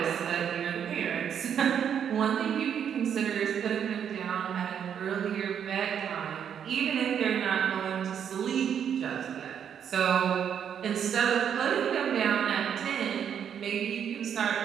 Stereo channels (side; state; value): left; quieter; 8.4 dB